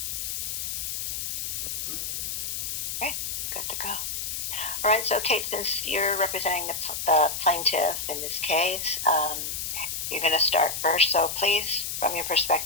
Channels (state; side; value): noise; left; hiss, 3 dB below the sound